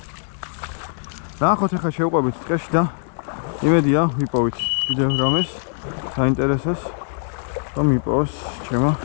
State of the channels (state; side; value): silent; right; 61 dB below the other